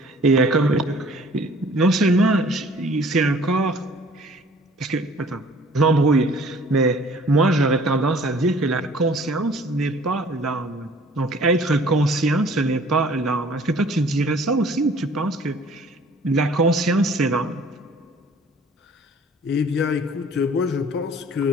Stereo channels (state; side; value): normal; both; correlation 0.52